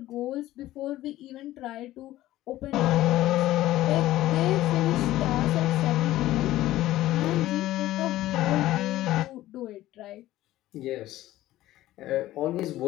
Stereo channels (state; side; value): quieter; right; 15.3 dB